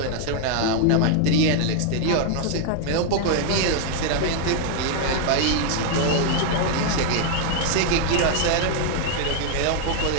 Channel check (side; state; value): both; different; correlation 0.00